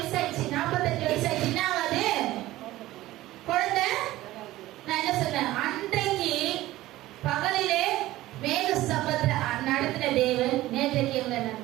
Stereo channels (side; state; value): left; quieter; 16.4 dB